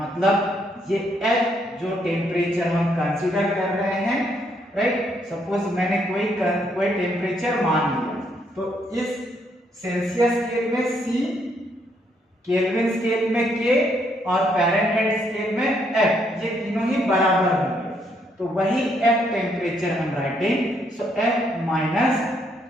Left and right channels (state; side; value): normal; both; correlation 0.73